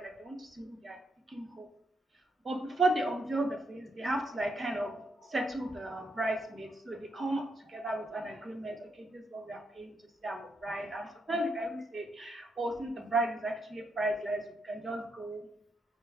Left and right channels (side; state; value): both; normal; correlation 0.79